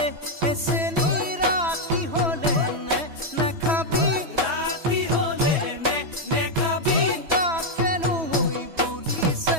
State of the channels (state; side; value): late; left; 3.1 ms